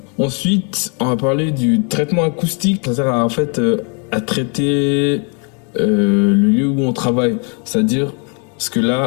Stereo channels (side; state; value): right; quieter; 37.3 dB